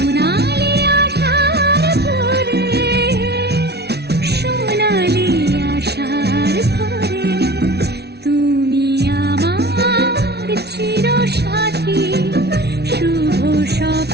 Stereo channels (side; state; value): left; late; 0.49 ms